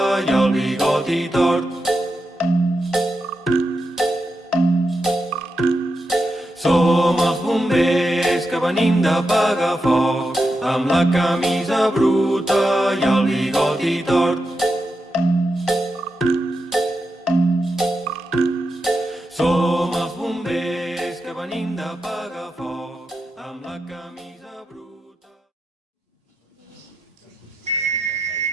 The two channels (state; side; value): normal; both; correlation 0.87